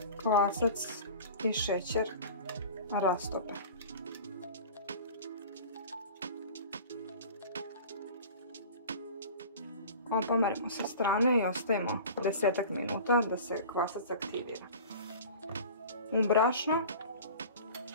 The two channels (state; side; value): inverted; both; correlation -0.39